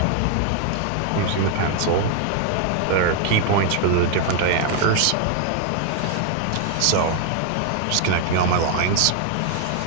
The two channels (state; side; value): different; both; correlation 0.00